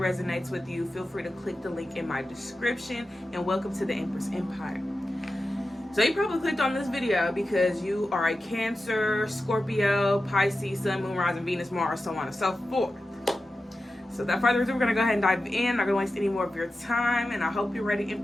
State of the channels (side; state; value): both; normal; correlation 0.92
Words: with you, feel free to click the link in my description, and welcome to the Empress Empire. So you probably clicked on this video because you are a Cancer, Scorpio, Pisces, Sun, Moon, Rising, Venus, Mars, so on and so forth. So without further ado, we're going to go ahead and dive in. Not going to waste any more of your time, and I hope you're ready